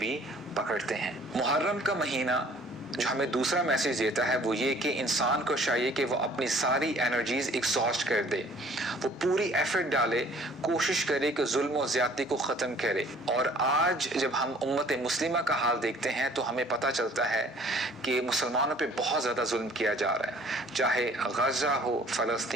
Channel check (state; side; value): normal; both; correlation 0.54